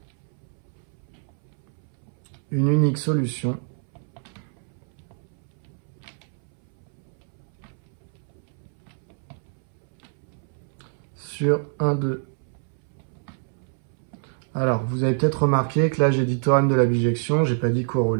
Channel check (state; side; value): silent; left; 61 dB below the other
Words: une unique solution sur 1, 2. Alors, vous avez peut-être remarqué que là, j'ai dit théorème de la bijection, j'ai pas dit